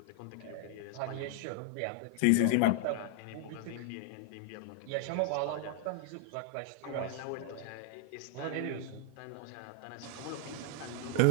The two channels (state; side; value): different; both; correlation 0.00